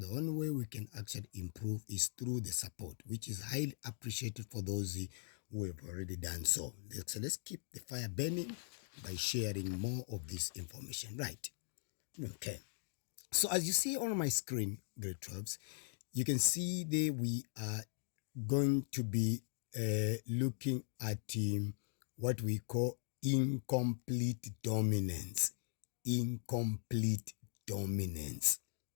only way we can actually improve is through the support, which is highly appreciated for those who have already done so. So let's keep the fire burning by sharing more of this information. Right. Okay. So as you see on my screen, grade 12s, you can see there we are going to be looking at what we call incomplete dominance. Incomplete dominance.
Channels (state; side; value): silent; right; 51 dB below the other